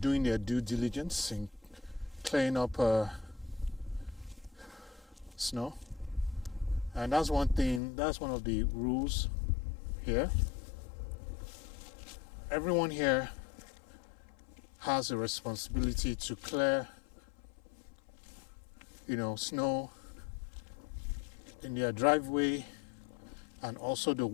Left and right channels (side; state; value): right; drops out; at 7.8 s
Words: their due diligence in clearing up snow. And that's one of the rules here. Everyone here has a responsibility to clear, snow in their driveway and also the